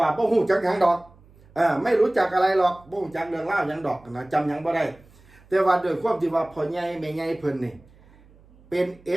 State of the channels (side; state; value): right; noise; hum, 27 dB below the sound